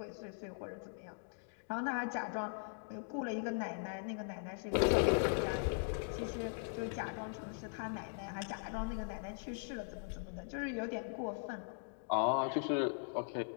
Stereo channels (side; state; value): right; silent; digital silence